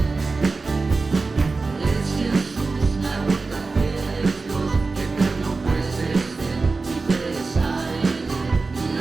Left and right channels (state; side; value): quieter; left; 3.9 dB